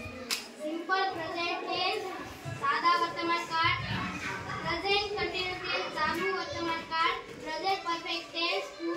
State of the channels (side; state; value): both; identical; correlation 1.00